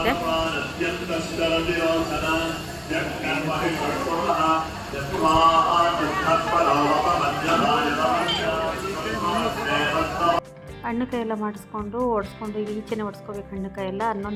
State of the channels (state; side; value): identical; both; correlation 1.00